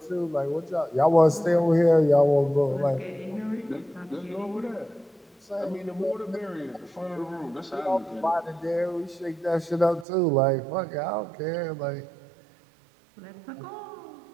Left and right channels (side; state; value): left; drops out; at 10.1 s